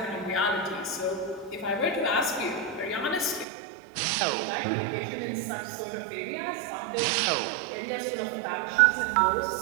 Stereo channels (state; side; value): drops out; left; at 3.5 s